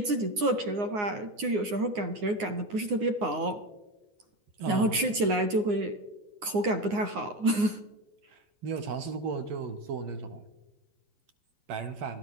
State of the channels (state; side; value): late; left; 9.6 ms